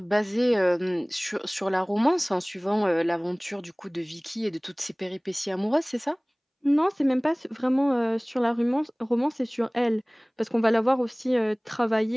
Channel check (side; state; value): both; identical; correlation 1.00